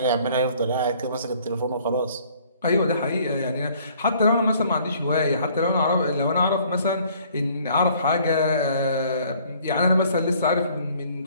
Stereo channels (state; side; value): inverted; both; correlation -0.58